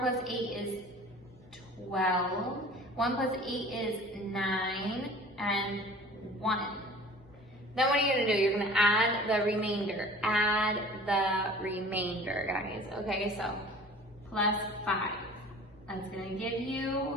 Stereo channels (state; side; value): normal; both; correlation 0.45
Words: 8 is 12. 1 plus 8 is 9. And 1. Then what are you going to do? You're going to add the remainder. Add the remainder, guys. Okay, so plus 5. That's going to give